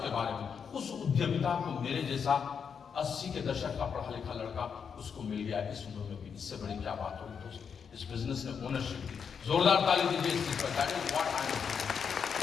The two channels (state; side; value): quieter; right; 6.7 dB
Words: बारे में। उस उद्यमिता को मेरे जैसा 80 के दशक का पढ़ा लिखा लड़का उसको मिल गया इस उम्र में भी। इससे बड़ी क्या बात होगी दोस्त? इस बिजनेस में ओनरशिप की जोरदार ताली दीजिए इस चीज पर।